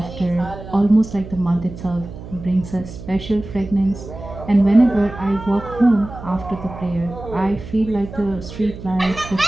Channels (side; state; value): right; noise; hum, 13 dB below the sound